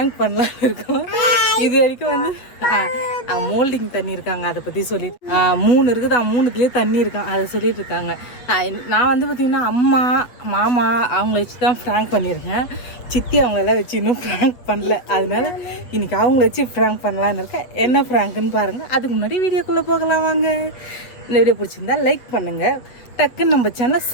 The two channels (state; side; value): late; right; 8.0 ms